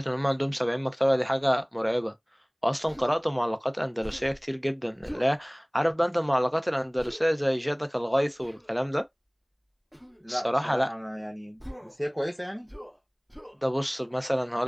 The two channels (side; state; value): both; identical; correlation 1.00